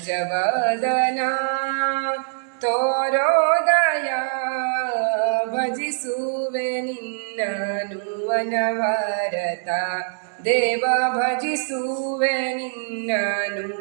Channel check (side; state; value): left; silent; digital silence